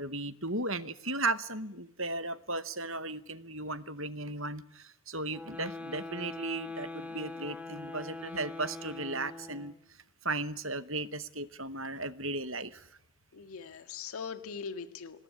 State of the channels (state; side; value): normal; both; correlation 0.03